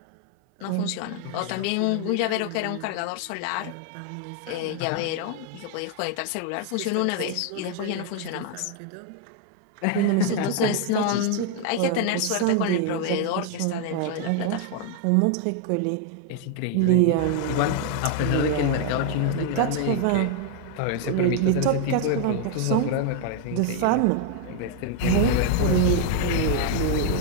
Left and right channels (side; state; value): both; different; correlation 0.00